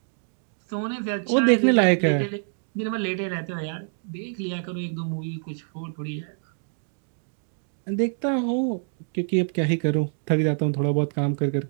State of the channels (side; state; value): left; silent; digital silence